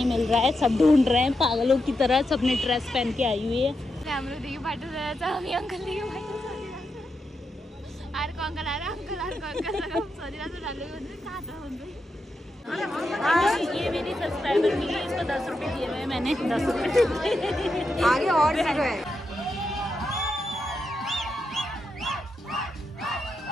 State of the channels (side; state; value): both; normal; correlation 0.85